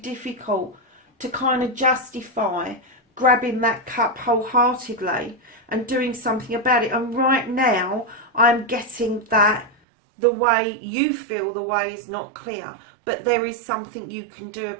to kind of justify grabbing that cup wholeheartedly and doing something about it. And right now I'm getting that the way you feel the way is not clear, but there is something you can do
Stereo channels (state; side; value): drops out; left; at 9.8 s